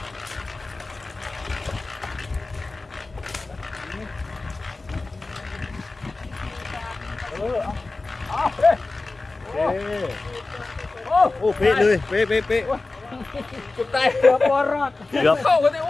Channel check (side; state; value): right; quieter; 3.4 dB